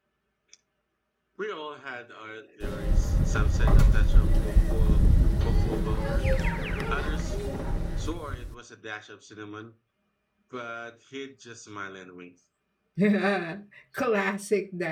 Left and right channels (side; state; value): both; identical; correlation 1.00